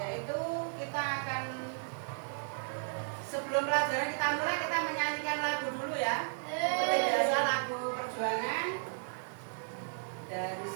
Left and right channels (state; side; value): silent; left; 55 dB below the other